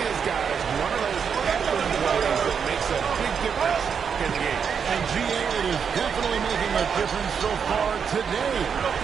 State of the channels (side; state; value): left; quieter; 6.8 dB